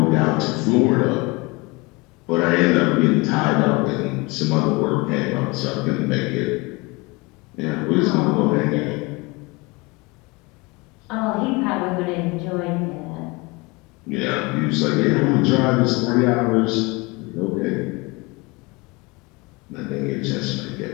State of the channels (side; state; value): right; quieter; 25.7 dB